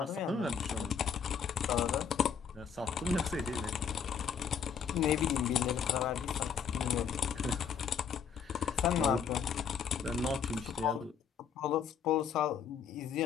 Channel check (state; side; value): quieter; right; 7.0 dB